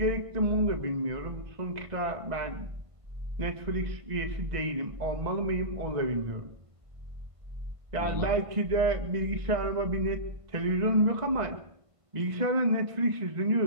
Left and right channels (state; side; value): late; left; 1.5 ms